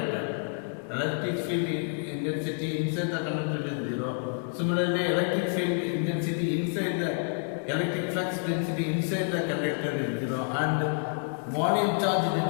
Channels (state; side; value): silent; right; 59 dB below the other